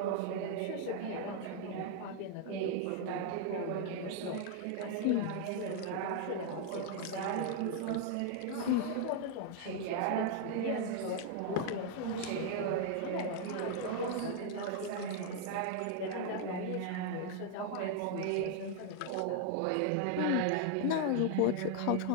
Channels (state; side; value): different; both; correlation 0.00